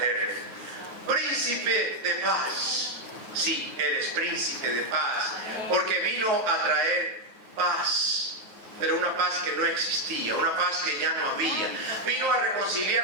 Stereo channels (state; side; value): late; left; 9.4 ms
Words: Príncipe de paz. Sí, Él es príncipe de paz, porque vino a traer paz, pero una paz que no existía, una paz que ya no había. Vino a